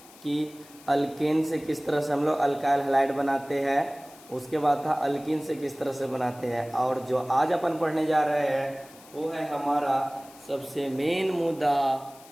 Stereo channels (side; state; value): left; noise; hiss, 22 dB below the sound